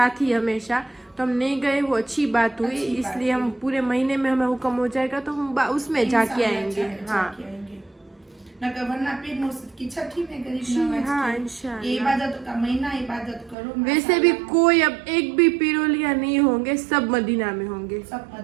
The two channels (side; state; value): left; drops out; at 13.6 s